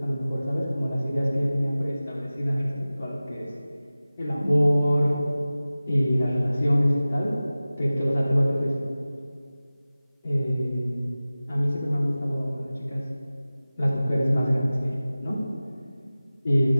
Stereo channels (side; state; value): both; inverted; correlation -0.97